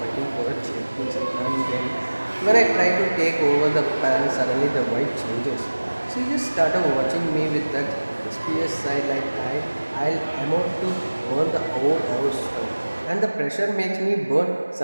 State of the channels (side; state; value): both; inverted; correlation -1.00